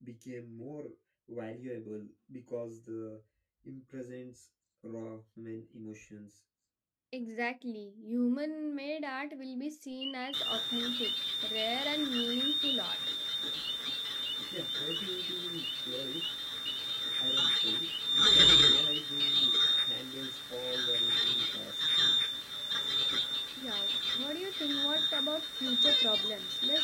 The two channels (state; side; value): identical; both; correlation 1.00